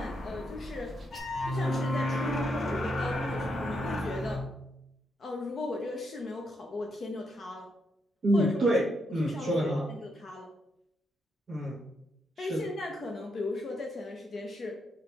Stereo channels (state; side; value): normal; both; correlation 0.79